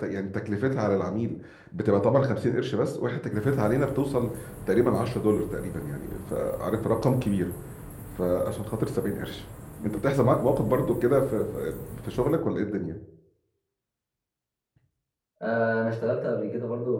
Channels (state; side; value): identical; both; correlation 1.00